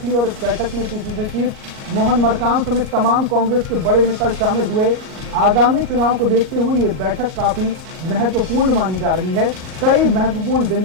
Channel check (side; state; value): left; late; 38 ms